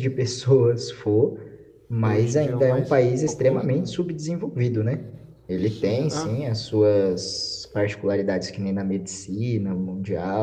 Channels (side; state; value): both; identical; correlation 1.00